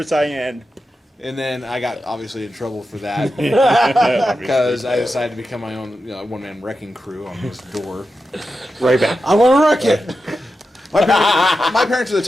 Saiyan. and then I got obviously in trouble for that because I decided to become my own one-man wrecking crew on this door. right back. I want to wreck it. My parents are the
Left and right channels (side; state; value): both; normal; correlation 0.90